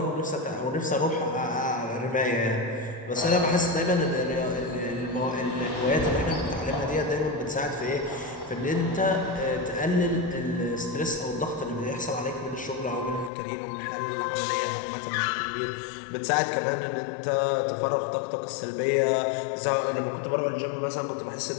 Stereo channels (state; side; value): drops out; right; at 13.3 s